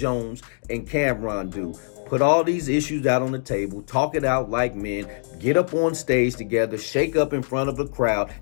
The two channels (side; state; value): right; silent; digital silence